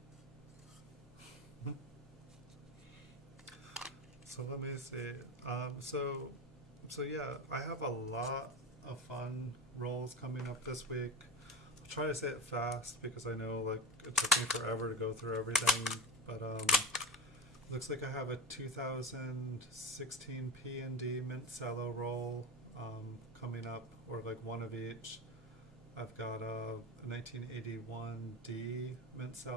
So let me see. So yeah, I have a lot of fun rolls coming up this week. I'll try to say it fast because I know like it took me forever to go through everything, but looks like I have a 2016 P&D Mint Cello roll coming up, or like one of each. I've got a 1981 D Mint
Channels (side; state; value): both; normal; correlation 0.25